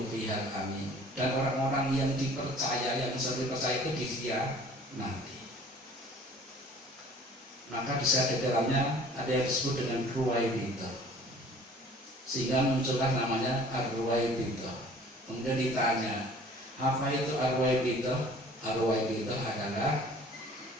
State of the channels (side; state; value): both; normal; correlation 0.50